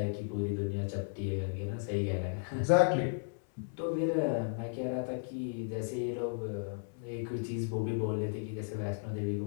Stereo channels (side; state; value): right; silent; 55 dB below the other